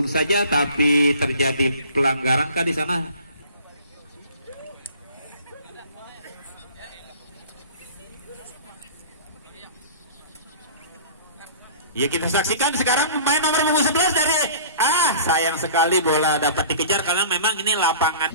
saja, tapi terjadi pelanggaran kah di sana? Ya, kita saksikan sekarang pemain nomor punggung 11 dari sayang sekali bola dapat dikejar karena memang ini lapangan.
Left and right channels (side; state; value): both; inverted; correlation -0.44